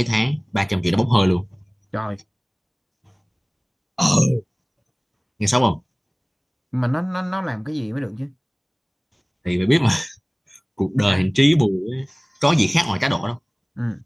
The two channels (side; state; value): both; identical; correlation 1.00